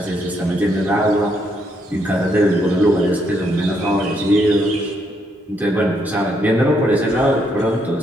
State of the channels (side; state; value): both; normal; correlation 0.74